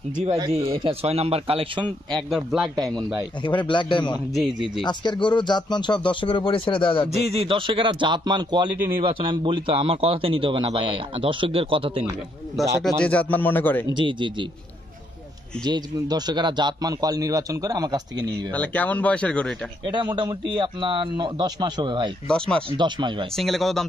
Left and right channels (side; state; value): both; normal; correlation 0.73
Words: জি ভাই জি, এটা 6 নাম্বার কালেকশন, একদম ব্ল্যাক ডায়মন্ড ভাই। একেবারে ব্ল্যাক ডায়মন্ড। জি জি জি। আজকের গরুর জাতমান সব দর্শকের উপরে ছেড়ে দেওয়া যাবে। জি জি, দর্শকেরা জাতমান কোয়ালিটি নির্বাচন আমি বলি তো, আমার কথাতে নিতে হবে না ভাই, দর্শকদের কথাতে নিবে। দর্শকরা যে জাতমান মনে করে। জি জি জি, যে দর্শকেরা জাতমান কোয়াল নির্বাচন করে আমার কাছ থেকে নিয়ে নিবে। তাহলে কেমন বয়সের গরু এটা? এটা মোটামুটি আপনার 10 মাস হবে ভাই। 10 মাস। 10 মাস ভাই। সিঙ্গেলে কত দাম